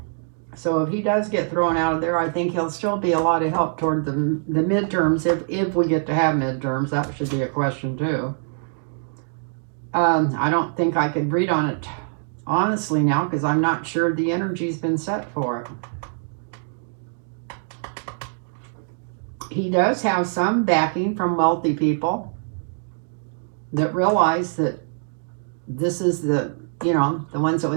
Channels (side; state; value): left; silent; digital silence